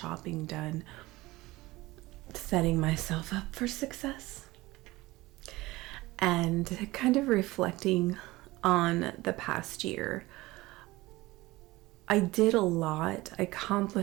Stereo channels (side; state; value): left; quieter; 19.7 dB